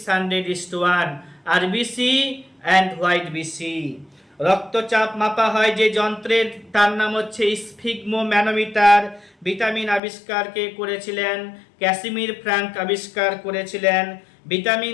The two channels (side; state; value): right; drops out; at 10.0 s